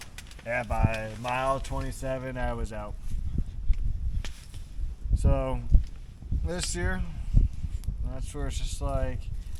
yeah, by mile 27 I was out. So this year. That's where it's just like,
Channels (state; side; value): identical; both; correlation 1.00